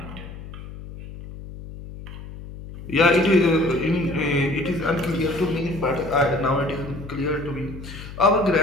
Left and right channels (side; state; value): left; noise; hum, 13 dB below the sound